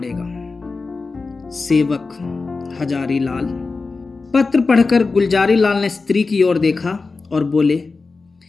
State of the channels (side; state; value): right; quieter; 4.0 dB